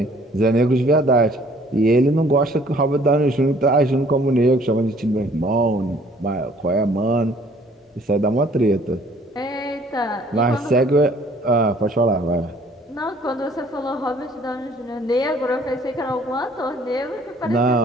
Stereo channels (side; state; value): both; normal; correlation 0.58